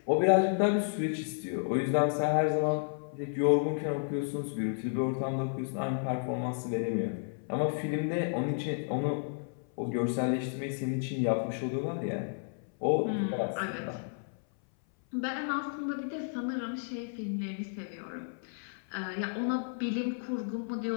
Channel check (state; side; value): silent; right; 56 dB below the other